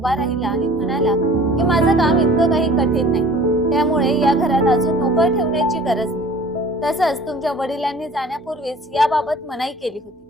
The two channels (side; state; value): both; normal; correlation 0.47